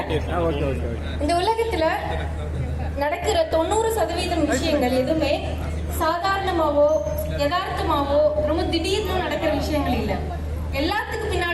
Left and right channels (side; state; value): both; identical; correlation 1.00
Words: இந்த உலகத்துல நடக்கிற 90% விஷயங்கள் எதுவுமே சாதாரணமாவோ யதார்த்தமாவோ ரொம்ப திடீர்னு நடக்கிற விஷயங்கள் இல்லை. எல்லாத்துக்கு